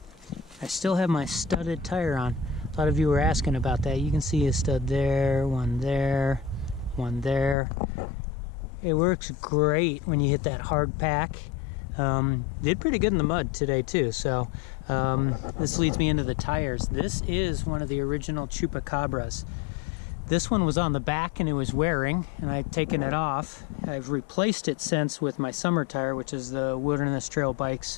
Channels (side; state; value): right; drops out; at 7.6 s